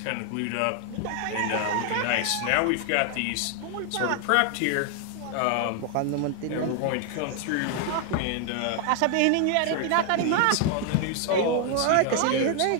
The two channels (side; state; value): both; different; correlation 0.00